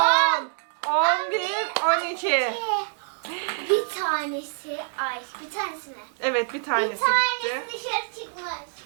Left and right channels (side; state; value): left; silent; 61 dB below the other